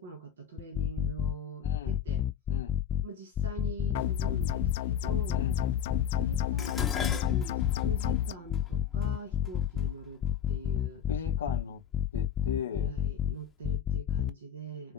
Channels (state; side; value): quieter; right; 8.9 dB